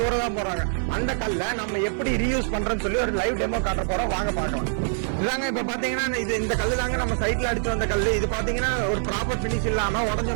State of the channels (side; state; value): left; silent; 55 dB below the other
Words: தூர தான் போறாங்க. அந்த கல்லை நம்ம எப்படி ரீயூஸ் பண்றோம்னு சொல்லி ஒரு லைவ் டெமோ காட்ட போறோம், வாங்க பார்க்கலாம். இதாங்க இப்ப பாத்தீங்கன்னா இந்த கல்லு தாங்க நம்ம சைட்ல அடிச்சு வந்த கல்லு. இது பாத்தீங்கன்னா ஒரு ப்ராப்பர் பினிஷ் இல்லாம உடஞ்ச